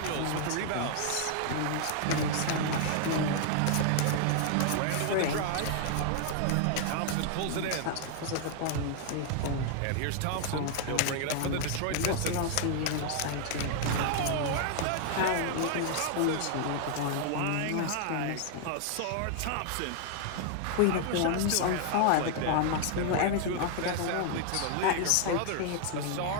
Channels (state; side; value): different; both; correlation 0.00